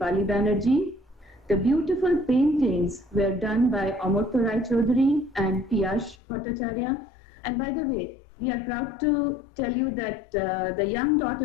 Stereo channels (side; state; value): right; drops out; at 6.2 s